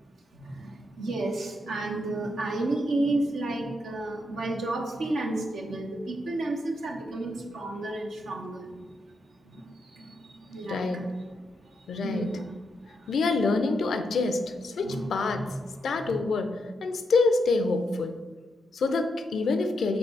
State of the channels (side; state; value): both; normal; correlation 0.81